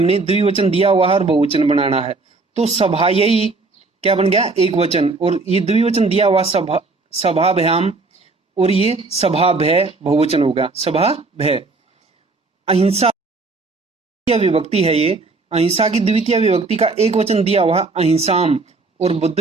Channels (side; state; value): left; quieter; 3.7 dB